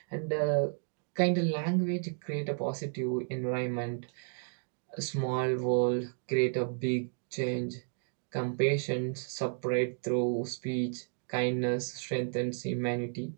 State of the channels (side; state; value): left; silent; digital silence